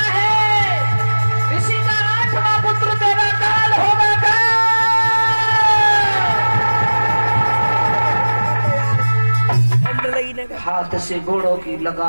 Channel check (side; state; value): both; inverted; correlation -1.00